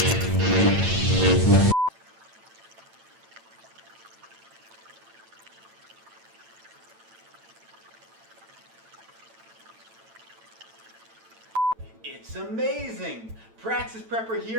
It's amazing! Praxis Prepper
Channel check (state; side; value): late; left; 9.0 ms